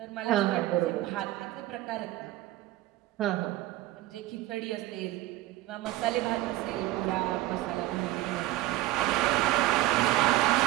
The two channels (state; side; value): quieter; left; 16.4 dB